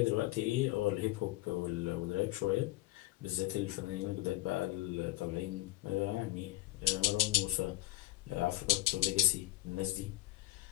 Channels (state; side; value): quieter; right; 18.4 dB